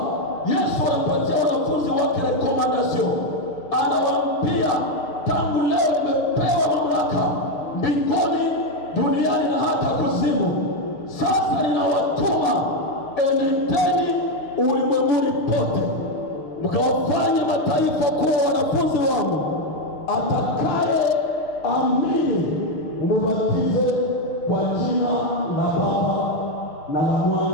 Yesu anapatia wanafunzi wake recommendation, anawaambia tangu leo nimepewa mamlaka mbinguni, duniani na hata kuzimu. Sasa ninawatuma, enendeni ulimwenguni pote mkawafanya mataifa kuwa wanafunzi wangu. Atakaye amini umubatize kwa jina la Baba na la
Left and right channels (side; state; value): right; late; 6.5 ms